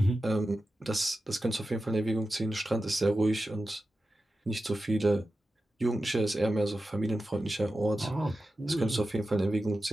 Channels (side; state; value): both; normal; correlation 0.92